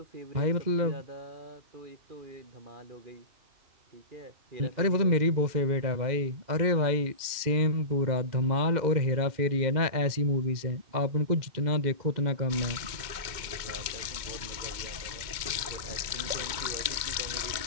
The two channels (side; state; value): left; late; 2.2 ms